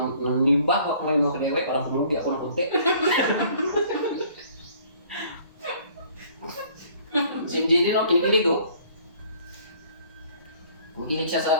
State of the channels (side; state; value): both; inverted; correlation -0.56